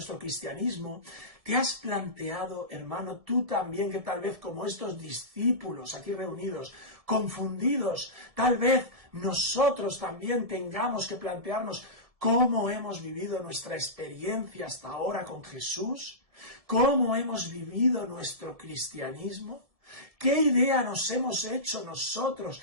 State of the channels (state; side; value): late; left; 1.7 ms